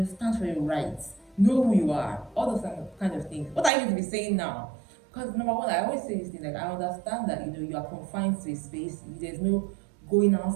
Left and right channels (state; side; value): drops out; left; at 3.7 s